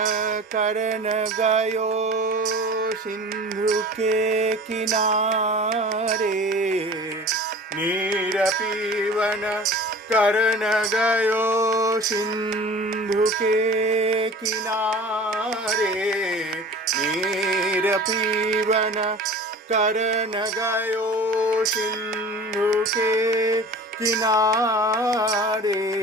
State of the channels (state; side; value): normal; both; correlation 0.40